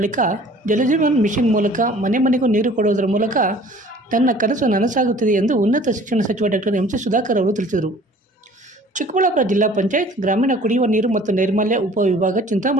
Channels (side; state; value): both; normal; correlation 0.50